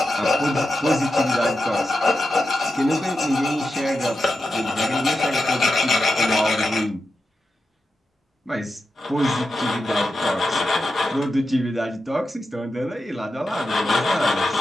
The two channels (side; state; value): both; normal; correlation 0.89